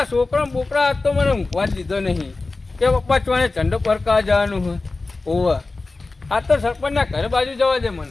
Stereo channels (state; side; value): quieter; right; 3.5 dB